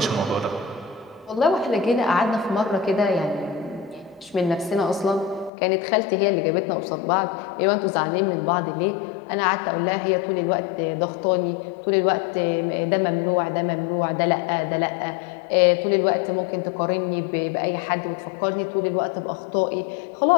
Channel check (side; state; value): right; drops out; at 5.5 s